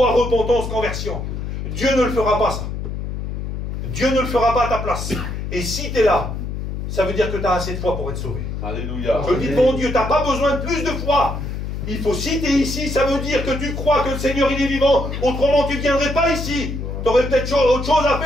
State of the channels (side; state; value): left; noise; hum, 5 dB below the sound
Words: repentance, conversion. Dieu ne le fera pas, ça. Dieu ne le fera pas à ta place. Et si tu es là, ça veut dire que tu as assez de foi pour être sauvé. Alléluia. Je le dis devant Dieu, tu n'as pas besoin de plus de foi. Il faut, si tu es ici, ça veut dire que tu crois que le Seigneur, il est vivant. Autrement, tu ne viendrais pas ici. Tu aurais peut-être autre chose à